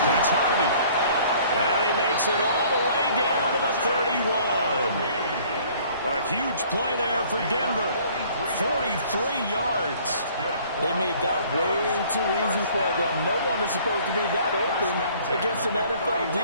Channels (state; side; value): inverted; both; correlation -0.55